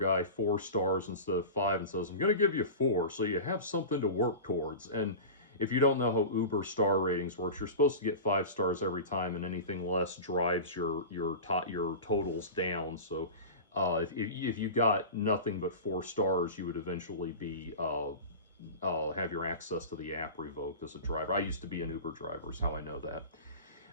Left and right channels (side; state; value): both; inverted; correlation -0.30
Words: 4 stars instead of 5 and says, I'm going to give you 4 so you have something to work towards. And if you don't know how Uber star ratings works, you're supposed to get 5 stars every time, and anything less drives your totals down. So if you got nothing but 4 stars, you would eventually be have your access to the app revoked as a driver. I used to be an Uber driver, is how I know that.